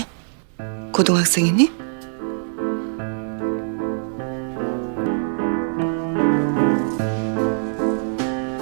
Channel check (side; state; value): left; silent; digital silence